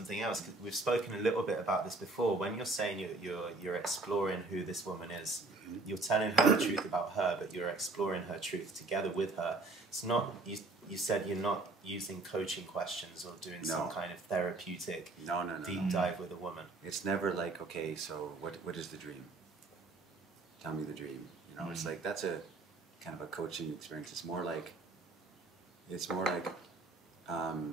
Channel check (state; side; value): quieter; left; 3.4 dB